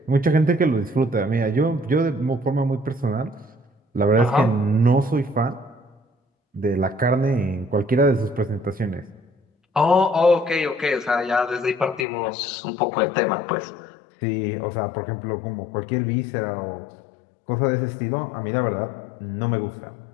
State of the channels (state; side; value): drops out; right; at 12.1 s